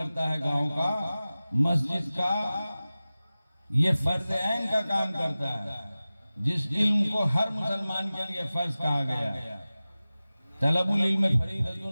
है गांव का, मस्जिद का, ये फर्ज ऐन का काम करता है, जिस इल्म को हर मुसलमान के लिए फर्ज कहा गया। तलबुल इल्म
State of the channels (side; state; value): both; inverted; correlation -0.97